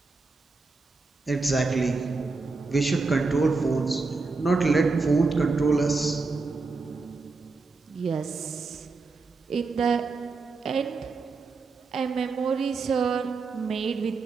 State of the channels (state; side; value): quieter; left; 4.0 dB